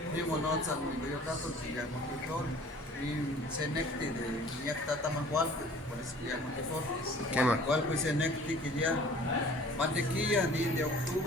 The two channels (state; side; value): normal; both; correlation 0.49